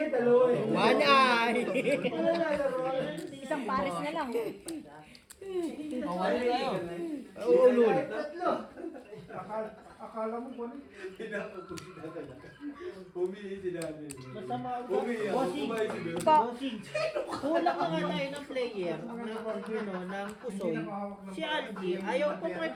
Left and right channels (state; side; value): identical; both; correlation 1.00